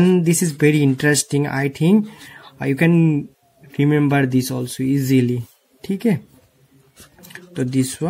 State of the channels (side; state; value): both; identical; correlation 1.00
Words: this is very interesting, I think you can remember this also easily. ठीक है, तो this